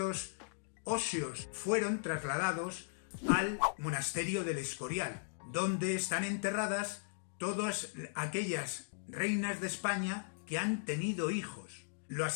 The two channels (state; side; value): silent; right; digital silence